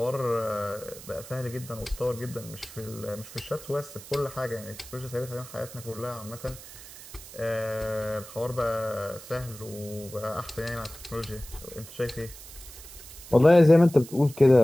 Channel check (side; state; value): right; noise; hiss, 16 dB below the sound